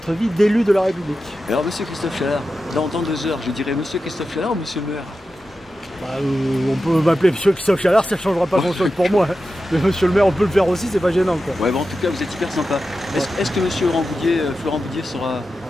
vie d'élu de la République. Alors, monsieur Christophe Chalard, dans 2 heures, je dirais monsieur Christophe Chalard ou monsieur le maire? Bah, on peut m'appeler monsieur Christophe Chalard, ça ne changera pas grand-chose pour moi. Mais monsieur le maire, on peut le faire aussi, c'est pas gênant, quoi. Ouais, bon, en tout cas, vous êtes hyper sympa. Est-ce que monsieur Florent Boudier sera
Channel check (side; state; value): both; normal; correlation 0.91